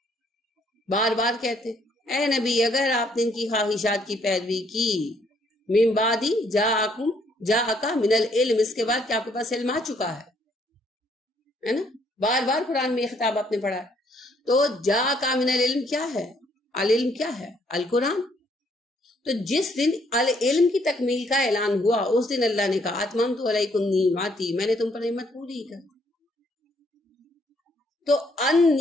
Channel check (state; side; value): normal; both; correlation 0.68